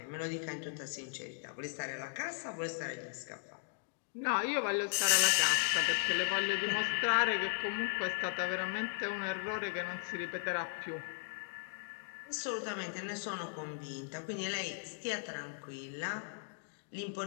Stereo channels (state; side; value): silent; right; digital silence